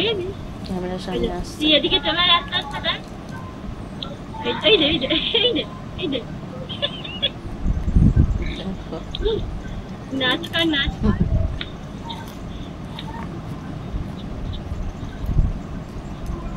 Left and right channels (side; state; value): both; identical; correlation 1.00